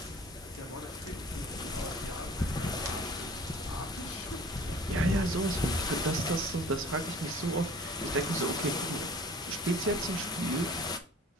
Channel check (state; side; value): normal; both; correlation 0.48